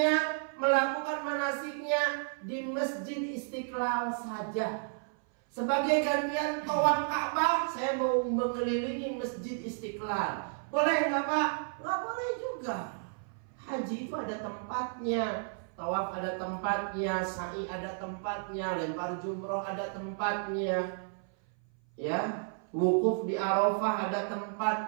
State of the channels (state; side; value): silent; left; 56 dB below the other